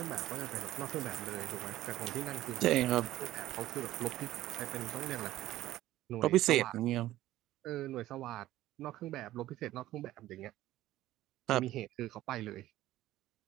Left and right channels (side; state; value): left; quieter; 15.0 dB